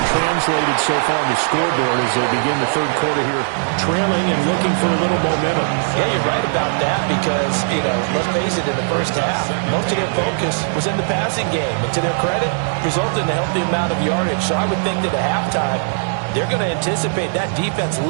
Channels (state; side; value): silent; left; digital silence